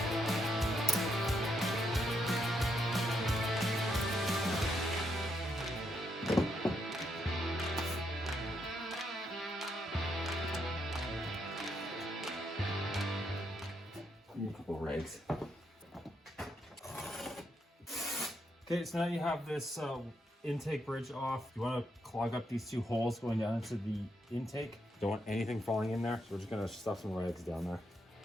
A couple rags. Okay, so now you have this intake bridge off. You want to clog up these two holes going down into the intake. Don't want anything falling in there, so we're just going to stuff some rags down there.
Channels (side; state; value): both; normal; correlation 0.78